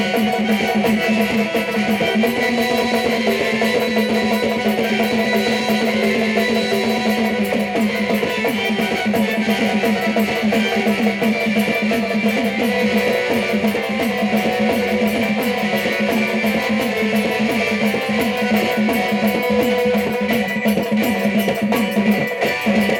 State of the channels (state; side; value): identical; both; correlation 1.00